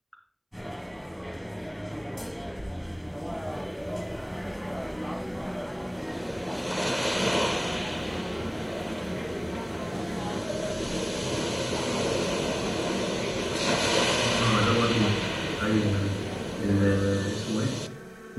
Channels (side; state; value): both; identical; correlation 1.00